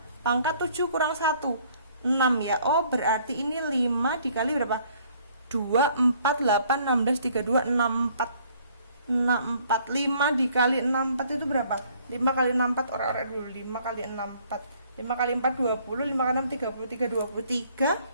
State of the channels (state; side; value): inverted; both; correlation -0.60